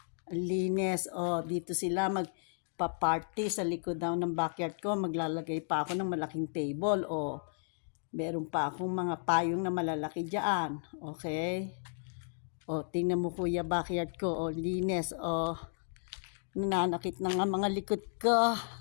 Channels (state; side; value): silent; right; digital silence